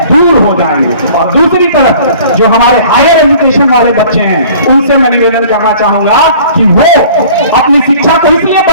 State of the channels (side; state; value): both; inverted; correlation -0.49